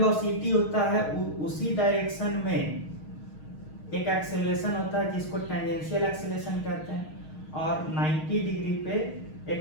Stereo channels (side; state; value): right; late; 6.4 ms